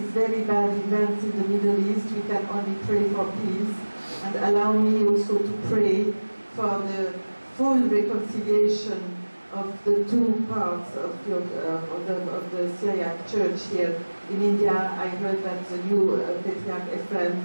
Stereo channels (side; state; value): both; inverted; correlation -1.00